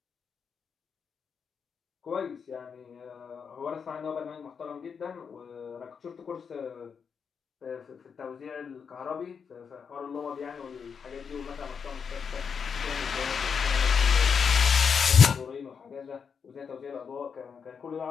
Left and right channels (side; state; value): right; quieter; 6.4 dB